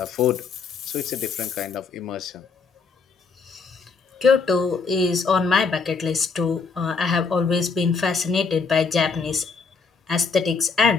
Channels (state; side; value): quieter; right; 4.9 dB